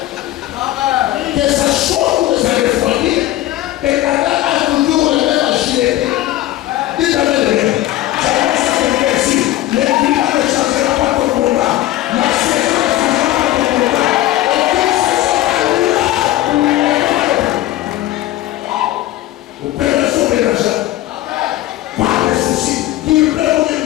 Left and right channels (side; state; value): right; quieter; 14.9 dB